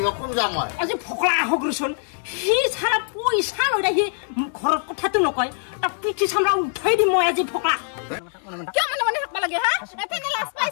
কোন জামাই আজি ফকলা হগ্রসন হি সারা পয়সা লই রাখি ঘরত কথাটো নকয় তা পিঠি সামরা উঠাই দি মই আজি ফকলা কিয় মানে থাকবা লাগে হা এফেনে লাজ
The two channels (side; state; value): right; silent; 56 dB below the other